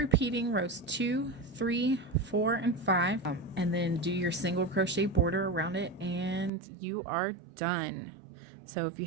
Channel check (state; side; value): drops out; left; at 6.5 s